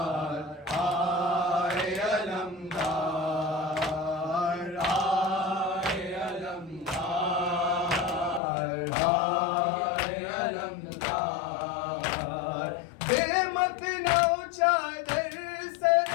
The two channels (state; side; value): drops out; right; at 8.4 s